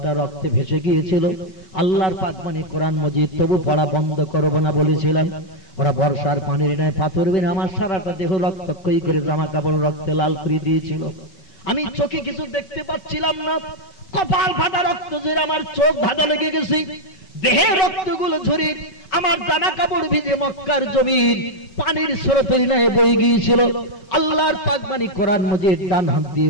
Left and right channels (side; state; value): right; late; 5.3 ms